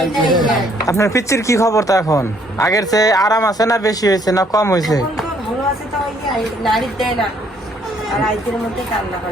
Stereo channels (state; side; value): normal; both; correlation 0.65